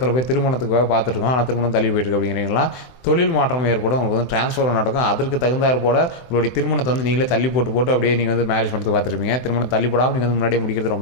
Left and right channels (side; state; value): right; late; 24 ms